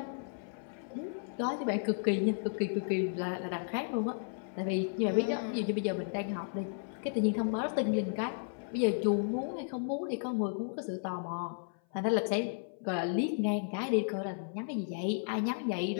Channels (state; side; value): silent; right; 55 dB below the other